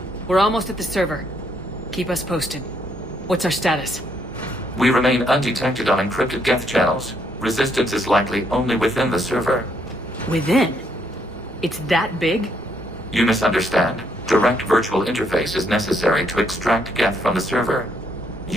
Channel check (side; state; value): both; normal; correlation 0.72